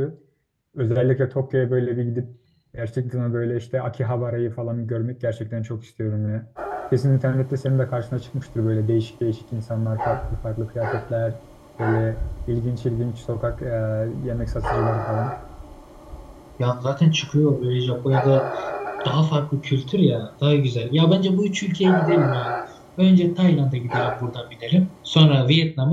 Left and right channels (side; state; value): both; identical; correlation 1.00